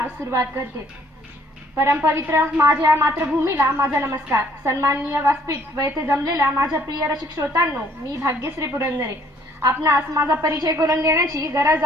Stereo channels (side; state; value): both; normal; correlation 0.62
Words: सुरुवात करते. परमपवित्र माझ्या मातृभूमीला माझा नमस्कार. सन्माननीय व्यासपीठ व येथे जमलेल्या माझ्या प्रिय रसिक श्रोतांनो, मी भाग्यश्री पुरंदरे. आपणास माझा परिचय करून देण्याची गरज